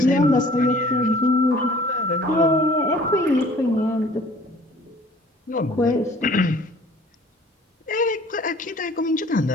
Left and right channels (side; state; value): both; normal; correlation 0.52